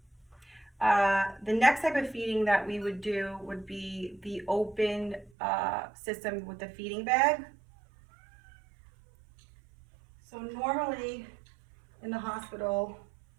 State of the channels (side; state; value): left; drops out; at 5.3 s